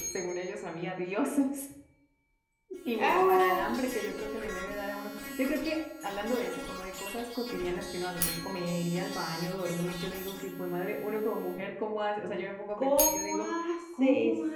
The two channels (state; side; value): identical; both; correlation 1.00